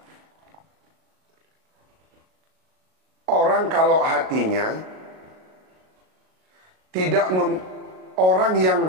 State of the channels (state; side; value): late; left; 38 ms